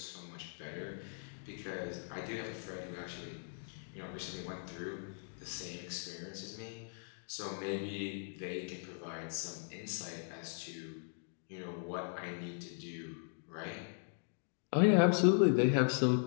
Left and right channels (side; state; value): right; silent; digital silence